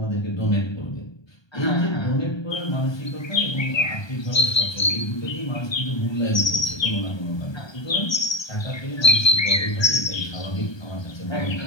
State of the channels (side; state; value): right; late; 1.3 ms